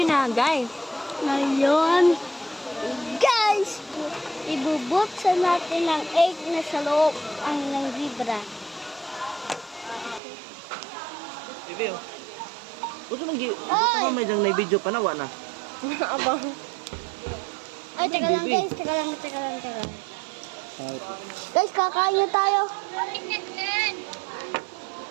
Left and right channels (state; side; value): drops out; left; at 10.2 s